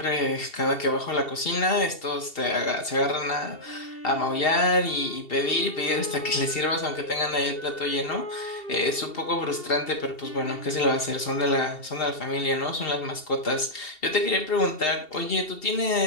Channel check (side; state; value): right; late; 2.7 ms